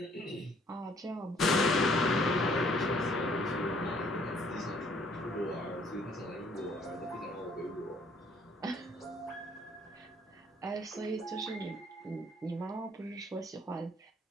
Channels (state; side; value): normal; both; correlation 0.62